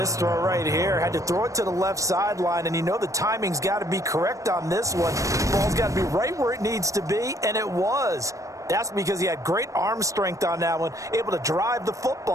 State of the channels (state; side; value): late; left; 0.16 ms